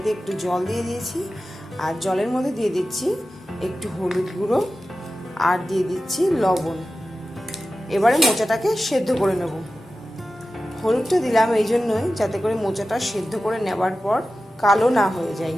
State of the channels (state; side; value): normal; both; correlation 0.94